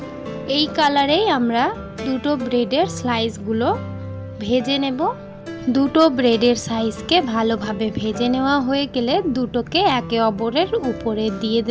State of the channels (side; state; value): both; identical; correlation 1.00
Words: এই কালারেই আমরা দুটো ব্রেডের স্লাইসগুলো ভেজে নেব। দুটো ব্রেডের সাইজকে ভালোভাবে ভেজে নেওয়া হয়ে গেলে দুটোকে একে অপরের উপরে দিয়ে